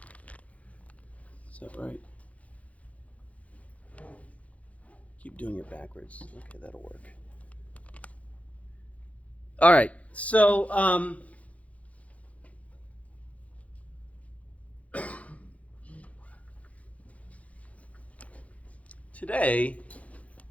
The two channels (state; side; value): late; right; 0.066 ms